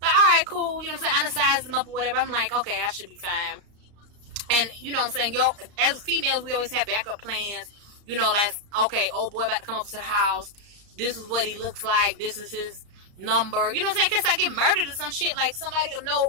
like, all right, cool. You know what I'm saying? I done sized them up or whatever. I'm like, okay, I should be fine. And, you know what I'm saying? Yo, as females, we always have backup plans. You know, like, okay, old boy about to come up to the house. This is what he looks like. This is his number. You know what I'm saying? In case I get murdered or some shit, like, somebody will know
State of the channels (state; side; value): late; left; 34 ms